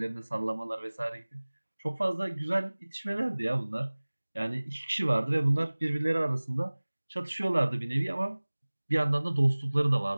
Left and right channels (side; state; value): both; inverted; correlation -1.00